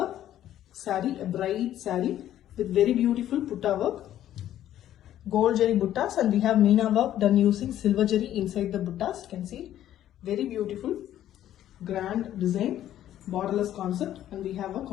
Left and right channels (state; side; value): quieter; right; 12.0 dB